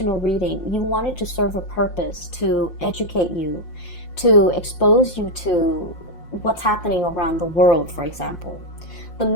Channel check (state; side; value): late; right; 5.7 ms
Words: reading, you want it to serve a purpose, to educate you, to expose you to what's happening around the world, for example. The